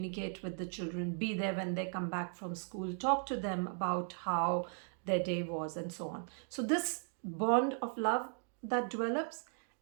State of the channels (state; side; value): silent; left; 53 dB below the other